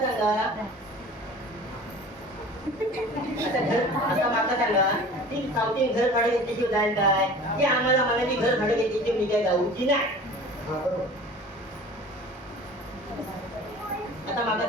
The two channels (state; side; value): normal; both; correlation 0.41